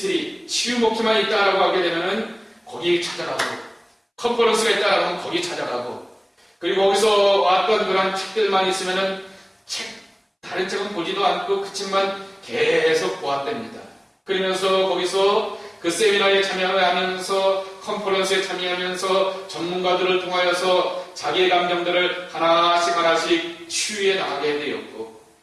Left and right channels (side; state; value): both; identical; correlation 1.00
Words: 치유 목회만 있다라고 하게 되면은 거기 찾아가고 컨퍼런스가 있다라고 하면 거기 찾아가고 그리고 거기서 왔던 그런 책들만 있으면은 다른 책은 보지도 않고 그 책만 계속 보았답니다. 그러면서 거기서 그 세미나에 참여하면서 컨퍼런스에 참여하면서 전문가들을 통하여서 자기의 감정들을 하나씩 치유해 나가게 되었고